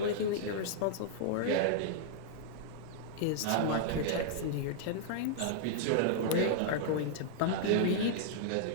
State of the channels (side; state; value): both; different; correlation -0.01